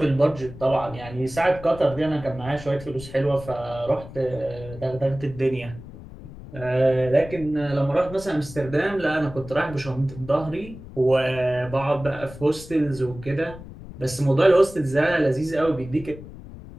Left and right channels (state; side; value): noise; left; rumble, 15 dB below the sound